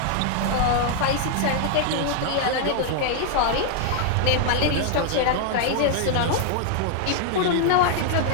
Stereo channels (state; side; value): different; both; correlation 0.00